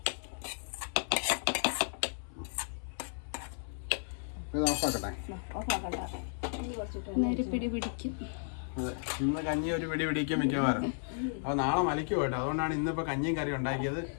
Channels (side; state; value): right; silent; 55 dB below the other